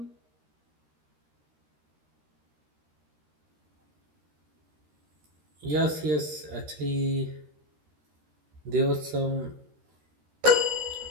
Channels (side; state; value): left; late; 13 ms